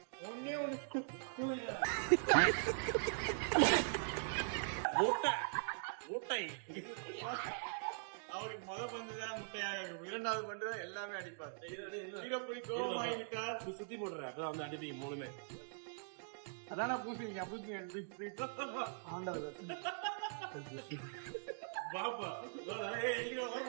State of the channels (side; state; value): left; silent; digital silence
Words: மூட்டை அவருக்கு முத பந்துதான் முட்டையாக இருக்கும், இரண்டாவது பந்து எல்லாமே அடிப்பார். வீரப்புலி கோபமாகிவிட்டார். சுத்தி போடுற அப்பதான் வந்து அடிப்பீங்க மூணுமே. அதான பூசிங்க பாப்பா